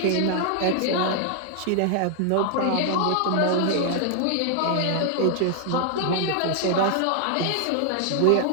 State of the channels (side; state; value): both; different; correlation 0.00